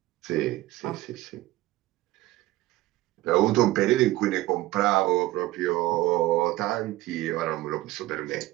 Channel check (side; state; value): left; quieter; 17.4 dB